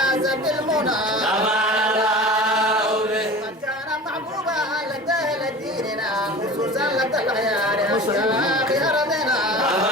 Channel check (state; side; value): normal; both; correlation 0.37